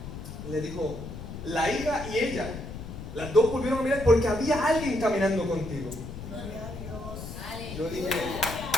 Le dijo: la hija y ella, las dos volvieron a mirar porque había alguien caminando contigo. Gloria a Dios. Yo dije:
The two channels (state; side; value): noise; left; rumble, 10 dB below the sound